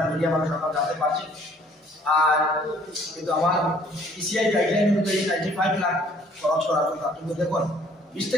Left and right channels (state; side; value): normal; both; correlation 0.58